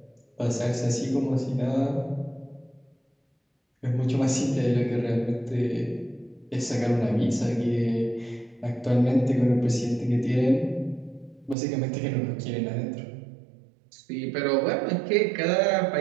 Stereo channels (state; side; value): drops out; left; at 11.6 s